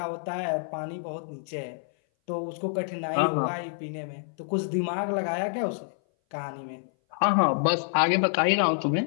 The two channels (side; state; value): right; silent; 58 dB below the other